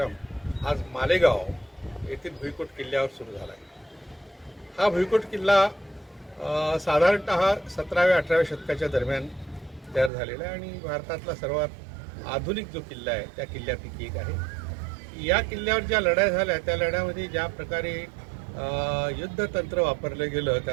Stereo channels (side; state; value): left; drops out; at 10.1 s